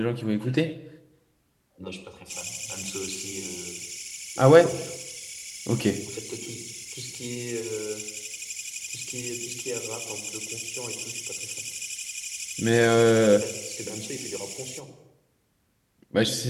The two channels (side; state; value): both; identical; correlation 1.00